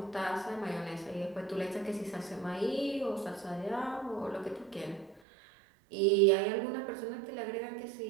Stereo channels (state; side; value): drops out; left; at 5.2 s